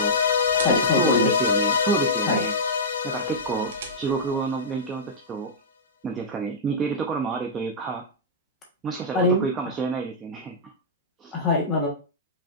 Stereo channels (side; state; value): both; normal; correlation -0.14